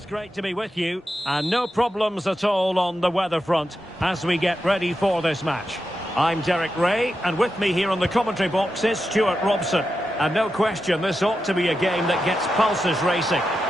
Great to be with you, and no problems at all on the weather front as we get ready for this match. I'm Derek Ray, and with me here on the commentary box is Stuart Robson. And no question, this ought to be a game that gets pulses racing.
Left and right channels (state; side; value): normal; both; correlation 0.89